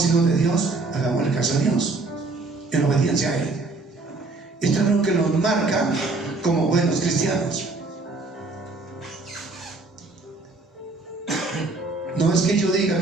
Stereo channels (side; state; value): left; quieter; 3.6 dB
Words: hijos de Dios, hagamos el caso a Dios, en obediencia a Él. Esto es lo que nos marca como buenos cristianos. No es que yo diga